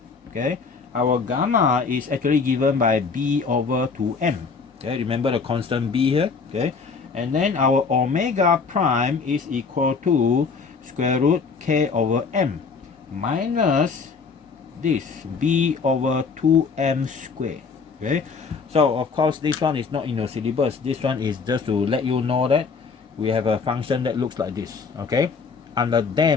okay, our gamma is actually given by b over 2m. Okay, remember the constant b here. Okay, and then our omega prime is equal to square root k over m minus this b over 2m squared. Okay, so of course this one is not in your syllabus. This one is just to let you know that we have a function that looks like this. Okay, under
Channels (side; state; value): right; quieter; 5.1 dB